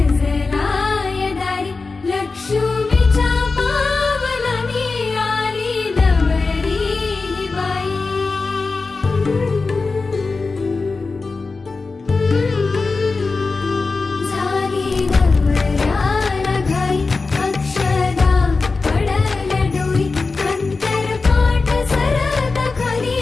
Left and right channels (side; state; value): right; quieter; 4.0 dB